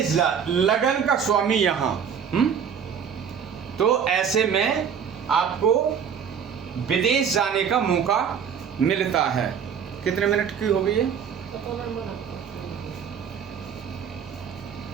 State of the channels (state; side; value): quieter; left; 7.4 dB